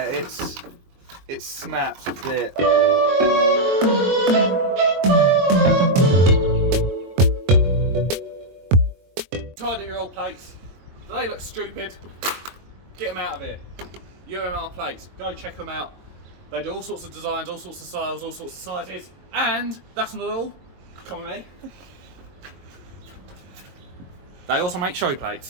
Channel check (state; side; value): late; left; 22 ms